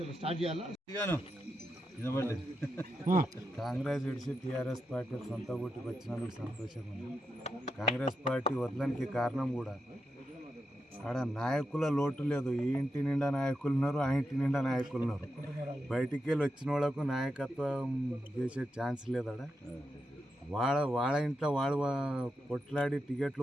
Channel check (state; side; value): normal; both; correlation 0.86